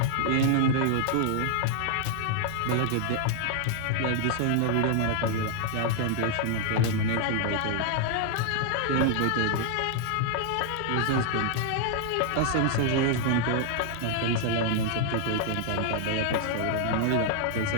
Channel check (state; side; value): different; both; correlation 0.00